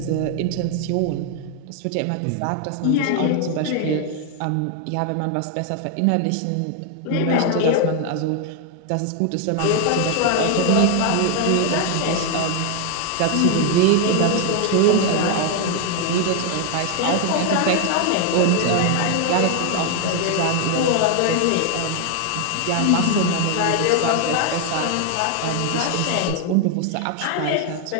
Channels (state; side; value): different; both; correlation 0.00